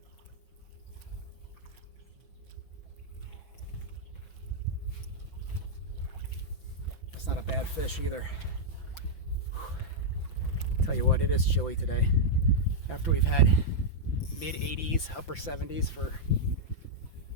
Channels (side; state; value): right; late; 5.9 ms